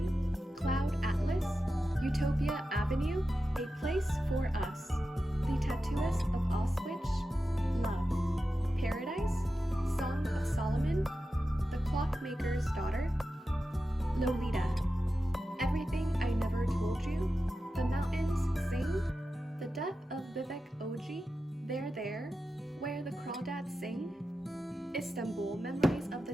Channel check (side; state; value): both; normal; correlation 0.92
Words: Cloud Atlas, Utopia Avenue, A Place for Us, The Tattooist of Auschwitz, Love, Paradise, Song of Solomon, The Clockmaker's Daughter, Lolita, Everything I Never Told You, The Mountains Sing, The Death of Vivek Oji, There, Where the Crawdads Sing, Istanbul, Memories of the